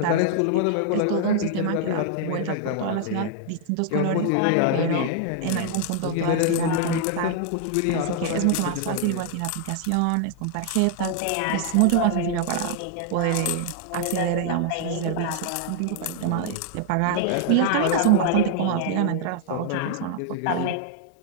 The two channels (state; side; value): different; both; correlation 0.00